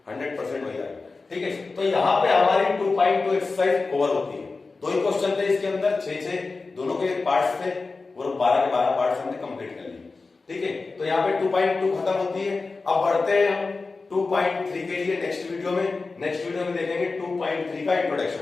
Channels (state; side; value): quieter; right; 3.9 dB